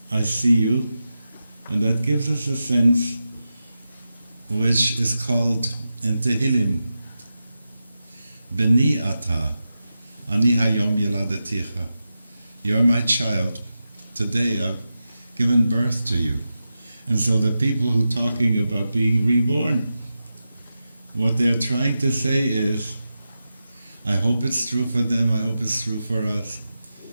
I see you, and that gives us a sense which is called in Tehillim, Beni ata, ani hayom yeladeticha. You're my child. Today I've given birth to you. And so the people who are talking about being reborn, what they're trying to say is, I hope it's true for them, I hope it's true for us,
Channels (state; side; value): inverted; both; correlation -0.91